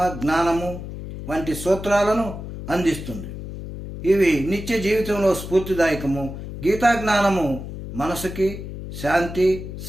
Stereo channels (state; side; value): noise; left; hum, 9 dB below the sound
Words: జ్ఞానము వంటి సూత్రాలను అందిస్తుంది. ఇవి నిత్య జీవితంలో స్ఫూర్తిదాయకము. గీతా జ్ఞానము మనసుకి శాంతి,